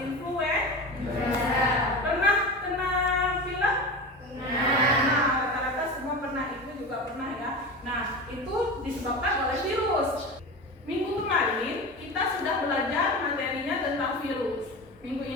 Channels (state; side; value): normal; both; correlation 0.28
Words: Pernah kena pilek? Nah, rata-rata semua pernah, itu juga pernah ya. Nah, itu disebabkan oleh virus. Minggu kemarin kita sudah belajar materinya tentang virus. Minggu